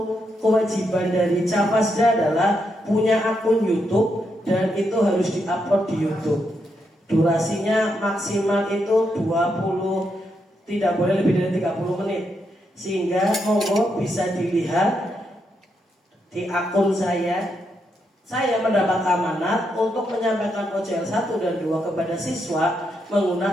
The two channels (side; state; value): both; normal; correlation 0.81